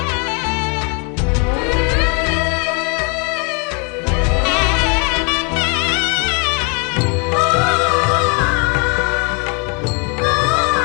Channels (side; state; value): right; quieter; 35.2 dB